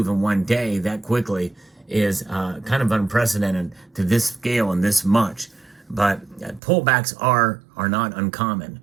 in one day that quickly is kind of unprecedented to this scale and this much. But pullbacks are not uncommon,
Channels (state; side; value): drops out; left; at 6.6 s